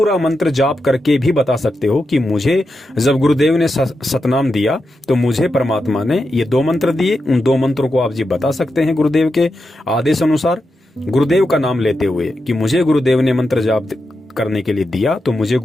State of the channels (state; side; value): normal; both; correlation 0.88